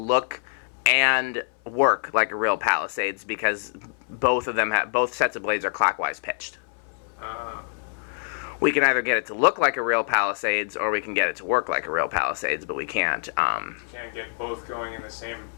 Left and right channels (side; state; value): right; silent; 61 dB below the other